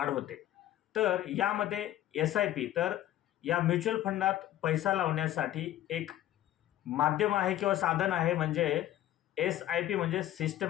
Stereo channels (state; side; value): quieter; right; 13.2 dB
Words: होते. तर यामध्ये एस-आय-पी तर या म्युच्युअल फंडात पैसा लावण्यासाठी एक माध्यम आहे किंवा साधन आहे म्हणजे एस-आय-पी म्हणजे